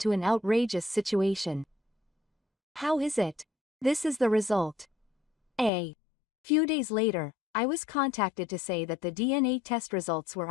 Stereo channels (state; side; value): drops out; right; at 5.7 s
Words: an outrageous situation. How is it? This is the result. A few days later, I was contacted to say that the DNA test results were